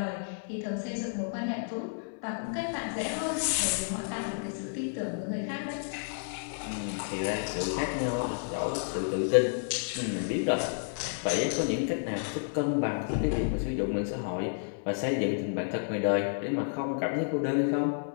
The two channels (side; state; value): right; silent; digital silence